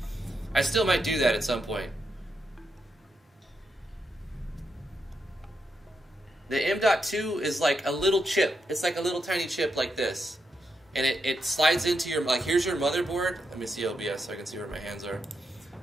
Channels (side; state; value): both; normal; correlation 0.83